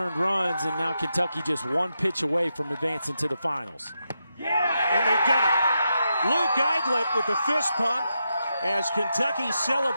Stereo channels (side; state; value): both; inverted; correlation -0.85